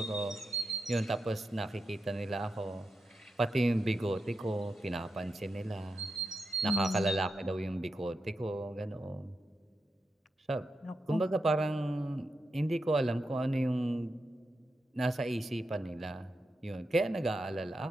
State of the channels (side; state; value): both; normal; correlation 0.87